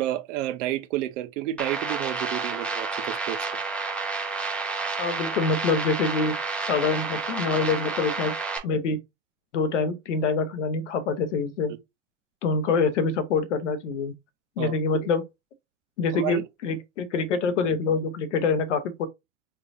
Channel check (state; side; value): normal; both; correlation 0.15